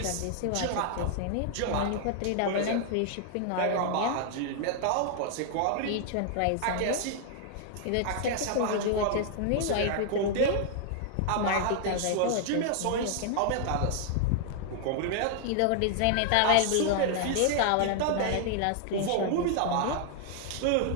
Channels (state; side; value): different; both; correlation 0.00